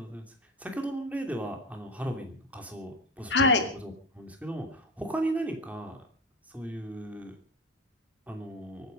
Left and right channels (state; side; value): normal; both; correlation 0.20